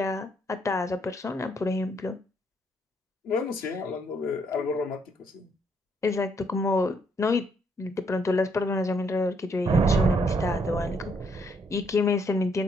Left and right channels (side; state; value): both; normal; correlation 0.71